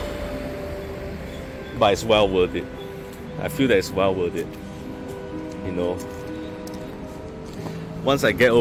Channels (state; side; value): identical; both; correlation 1.00